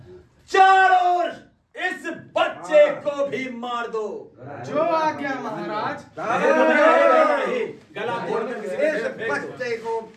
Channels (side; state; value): both; identical; correlation 1.00